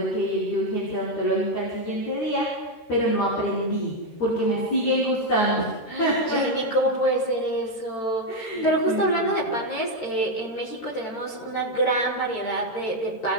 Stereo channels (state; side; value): late; right; 13 ms